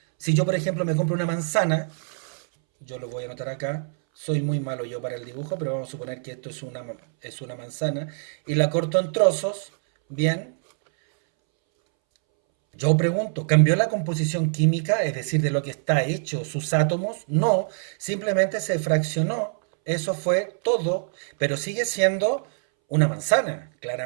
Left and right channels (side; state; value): left; silent; 62 dB below the other